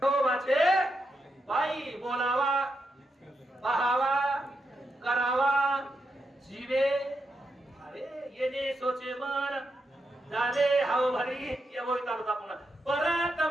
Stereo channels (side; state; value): both; normal; correlation 0.84